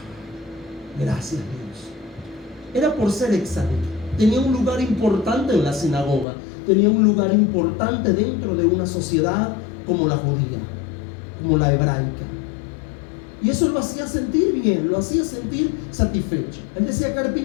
gracias Dios, era por ser Tzadik. tenía un lugar importante en la sinagoga, tenía un lugar importante dentro de una sociedad como la judía, como la hebraica. Y eso lo hacía sentir bien, lo hacía sentir satisfecho. Él decía,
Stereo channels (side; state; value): right; drops out; at 6.2 s